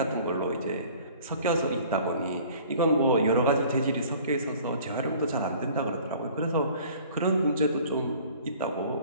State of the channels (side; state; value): both; inverted; correlation -0.50